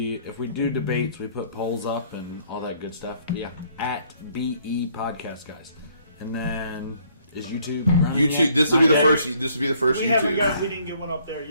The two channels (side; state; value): both; inverted; correlation -0.64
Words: if we do debates, we put polls up and all that good stuff. Yeah, at BE Podcast Guys. And then is YouTube? YouTube. This will be the first. This will be the first YouTube. We didn't get one up there